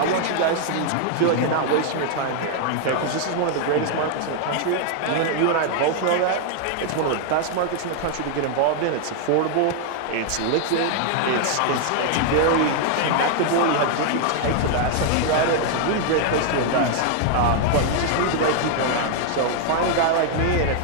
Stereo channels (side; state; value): both; different; correlation 0.00